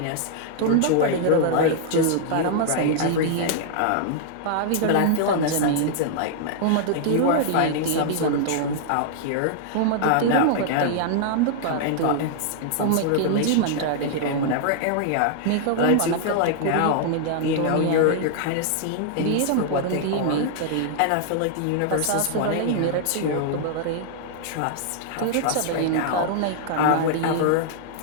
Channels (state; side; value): different; both; correlation -0.01